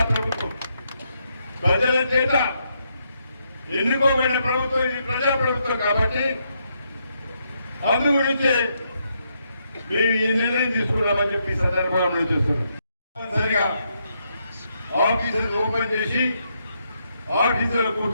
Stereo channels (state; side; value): inverted; both; correlation -0.78